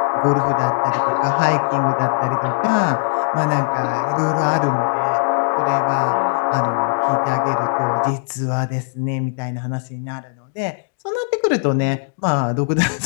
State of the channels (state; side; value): silent; right; digital silence